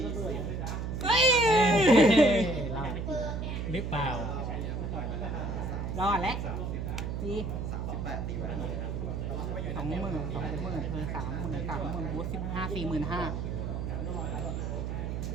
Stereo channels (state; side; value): noise; right; hum, 3 dB below the sound